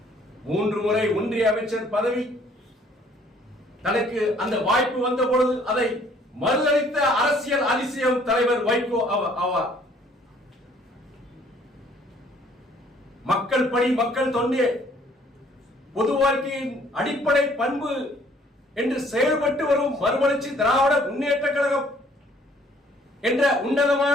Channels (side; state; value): both; normal; correlation 0.60